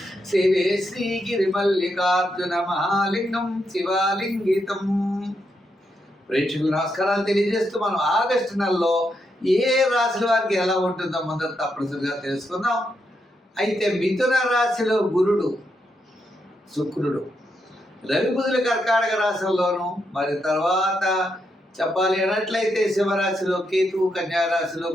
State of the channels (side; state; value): both; normal; correlation 0.82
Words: సేవే శ్రీగిరిమల్లికార్జున మహాలింగం శివాలింగితం. ప్రేక్షకులు నమస్కారాలు తెలియజేస్తూ మనం ఆగస్టు నెలలో ఏ రాశుల వారికి ఎలా ఉంటుందో మొదట తప్పనిసరిగా తెలుసుకుందాం. అయితే మిథున రాశిలో గురుడు, శుక్రుడు, రవి బుధుల కర్కాటక రాశుల్లోనూ, మరి తర్వాత చెప్పాలి అన్నట్లయితే సింహరాశిలో కేతువు, కన్యారాశిలో